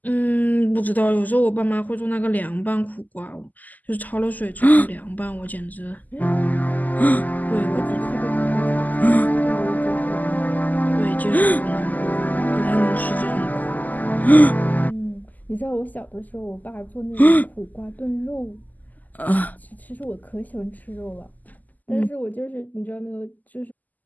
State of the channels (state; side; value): late; right; 0.082 ms